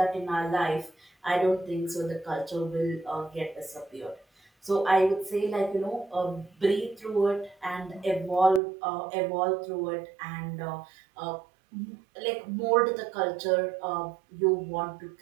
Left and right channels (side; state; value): left; drops out; at 8.6 s